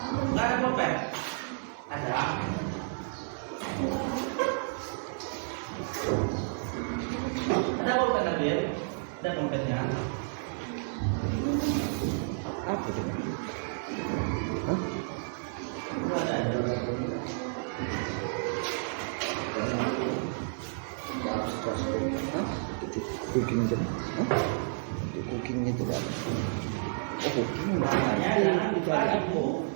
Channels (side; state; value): left; silent; digital silence